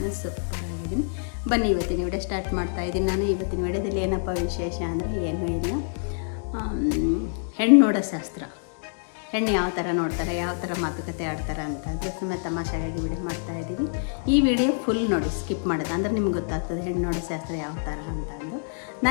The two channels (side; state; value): right; silent; digital silence